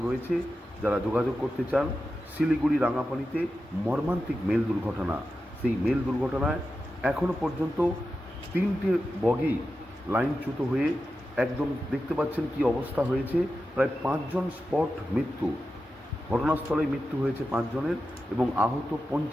রয়েছে, যারা যোগাযোগ করতে চান। শিলিগুড়ি রাঙাপানিতে মর্মান্তিক মেল দুর্ঘটনা। সেই মেল দুর্ঘটনায় এখনো পর্যন্ত 3টে বগি লাইনচ্যুত হয়ে একদম দেখতে পাচ্ছেন কি অবস্থা হয়েছে। প্রায় 5 জন স্পট মৃত্যু, ঘটনাস্থলে মৃত্যু হয়েছে 5 জনের এবং আহত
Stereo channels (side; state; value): both; normal; correlation 0.91